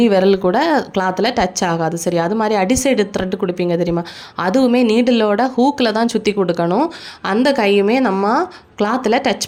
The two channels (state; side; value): identical; both; correlation 1.00